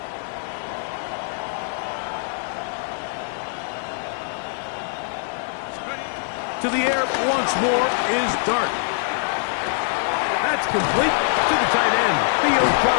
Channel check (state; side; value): silent; right; 55 dB below the other